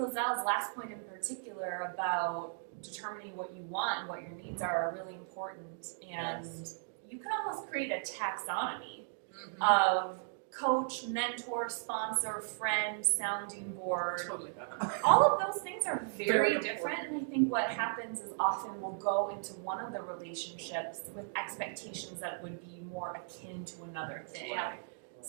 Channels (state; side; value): silent; left; digital silence